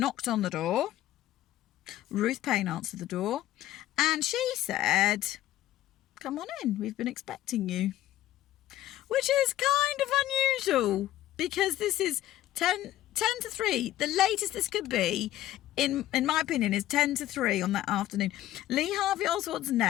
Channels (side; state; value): right; quieter; 14.1 dB